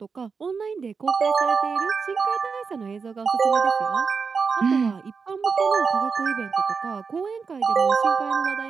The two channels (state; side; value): quieter; left; 5.3 dB